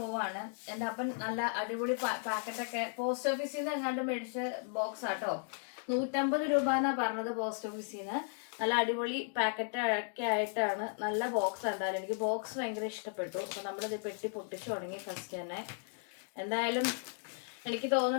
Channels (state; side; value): silent; right; 54 dB below the other